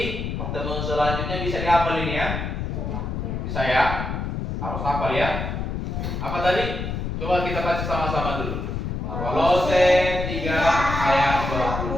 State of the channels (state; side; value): noise; left; rumble, 3 dB below the sound